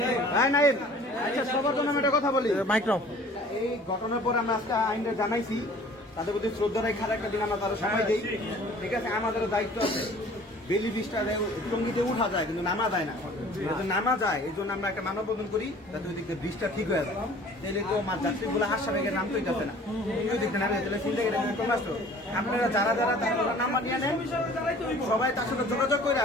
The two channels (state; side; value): normal; both; correlation 0.49